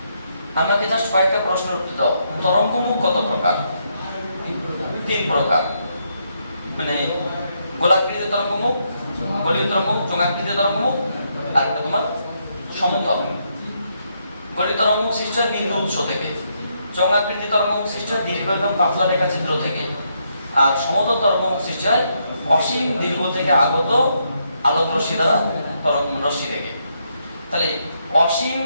আমাকে জাস্ট কয়েকটা প্রশ্নের উত্তর দাও। তরঙ্গমুখ কত প্রকার? 3 প্রকার, মানে গোলাকৃতি তরঙ্গমুখ, গোলীয় তরঙ্গমুখ, চোঙাকৃতি তরঙ্গমুখ, আর একটা তোমার সমতল। গোলীয় তরঙ্গমুখ সৃষ্টি হয় বিন্দু উৎস থেকে, চোঙাকৃতি তরঙ্গমুখ সৃষ্টি হয় দীর্ঘ এবং পাতলা রেখাচিত্র থেকে, আর সমতল তরঙ্গমুখ সৃষ্টি হয় অসীম দীর্ঘ থেকে আগত আলোক রশ্মি দ্বারা তরঙ্গ রশ্মি থেকে। তাহলে অসীম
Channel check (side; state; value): both; inverted; correlation -0.77